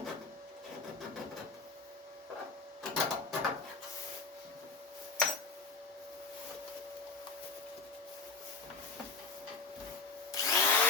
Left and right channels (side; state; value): right; quieter; 4.3 dB